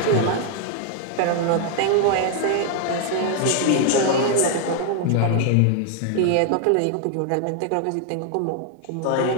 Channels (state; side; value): different; both; correlation 0.00